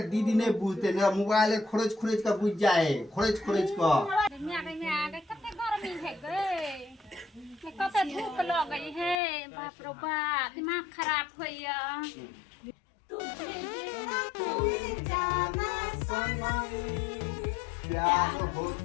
दीदी नहीं बुझते नहीं मोबाइल खोरज खोरज के बुझ जाए खोरज खोरज के में कते गर्मी है गे कते धूप लगे है बाप रो बाप दिमाग खराब होइया जाना सनम प्यार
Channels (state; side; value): drops out; right; at 9.2 s